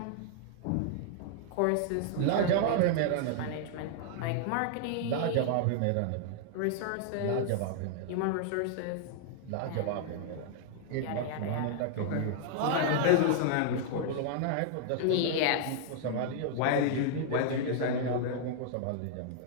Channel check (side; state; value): both; different; correlation -0.01